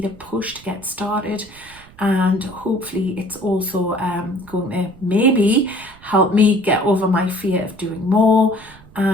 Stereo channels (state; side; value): noise; right; rumble, 23 dB below the sound